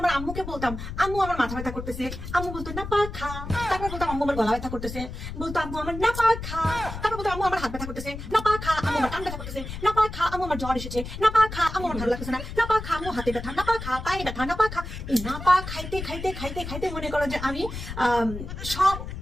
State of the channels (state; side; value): noise; left; rumble, 8 dB below the sound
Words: আমার আম্মুকে বলতাম আম্মু আমার মাথা ব্যথা করতেছে, আম্মু বলতো নাপা খা। তারপর বলতাম আম্মু আমার গলা ব্যথা করতেছে, বলতো আম্মু আমার নাপা খা। তারপর বলতো আম্মু আমার হাত ব্যথা করতেছে, নাপা খা। আম্মু আমার কান ব্যথা করতেছে, নাপা খা। আম্মু আমার জ্বর এসেছে, নাপা খা। আম্মু আমার ভালো লাগতেছে না, নাপা খা। আম্মু হাতে ব্যথা, নাপা খা। পায়ে ব্যথা, নাপা খা। এই নাপা খাইতে খাইতে খাইতে খাইতে মনে করো যে আমি সব